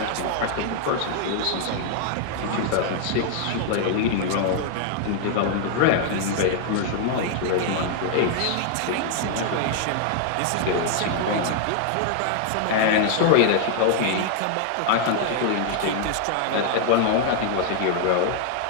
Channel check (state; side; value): different; both; correlation 0.00